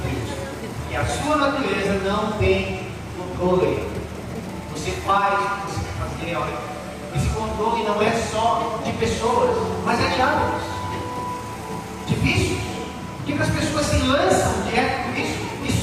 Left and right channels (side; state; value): both; identical; correlation 1.00